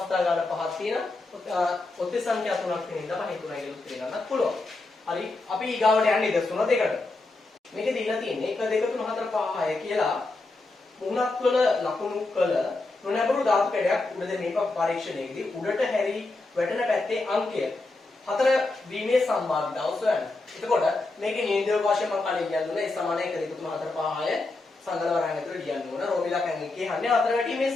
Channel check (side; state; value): right; quieter; 3.2 dB